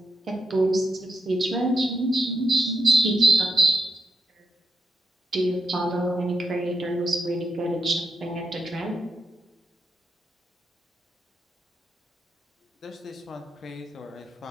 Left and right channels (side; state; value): both; normal; correlation 0.83